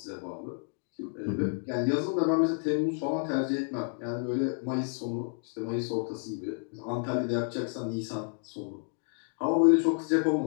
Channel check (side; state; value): right; silent; 58 dB below the other